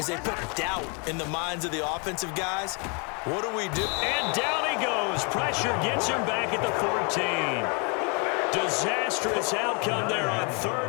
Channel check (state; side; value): quieter; right; 34.5 dB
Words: they put doubt in the minds of the offensive guys. What do we do? And down he goes. Pressure gets him back at the 14. Disastrous outcome there on